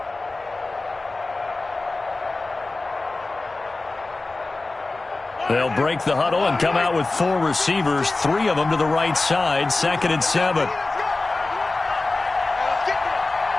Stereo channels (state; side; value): quieter; right; 3.3 dB